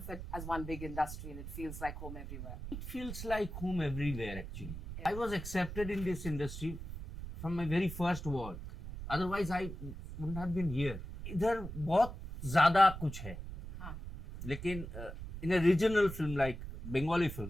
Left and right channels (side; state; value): right; noise; rumble, 9 dB below the sound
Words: it as one big industry and it feels like home everywhere? It feels like home everywhere actually. I was accepted in this industry from my very first work. Otherwise I wouldn't have been here. इधर बहुत ज़्यादा कुछ है. लेकिन in a regional film like Bengali